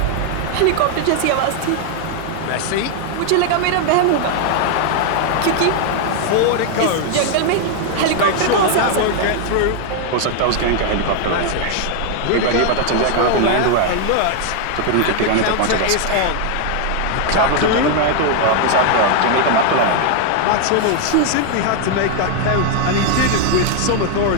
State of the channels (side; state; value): both; different; correlation 0.00